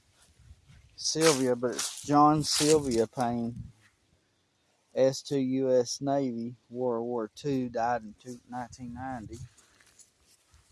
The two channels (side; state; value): both; identical; correlation 1.00